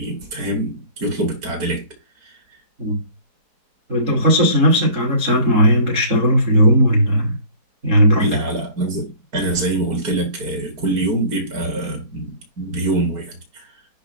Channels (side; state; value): left; late; 4.5 ms